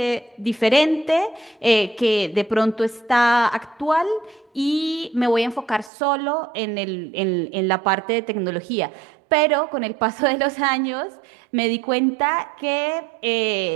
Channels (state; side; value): drops out; left; at 5.9 s